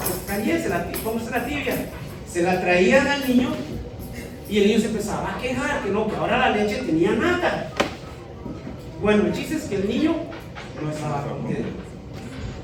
caliente, póngase la tibia. Se la traían al niño y el niño se empezaba a quejar, que no, que ahora la leche tenía nata. Bueno, el chiste es que el niño no estaba contento.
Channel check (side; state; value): both; identical; correlation 1.00